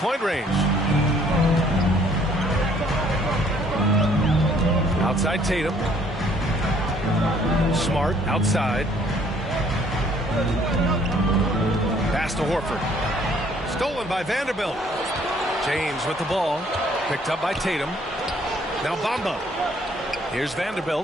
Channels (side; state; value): both; normal; correlation 0.61